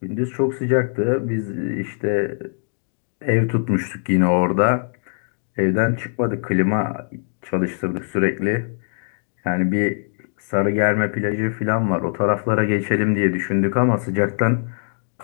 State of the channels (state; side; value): silent; right; digital silence